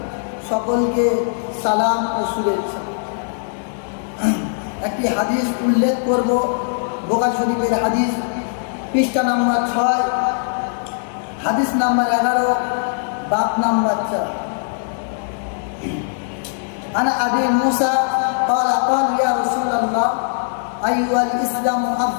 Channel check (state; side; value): silent; right; 59 dB below the other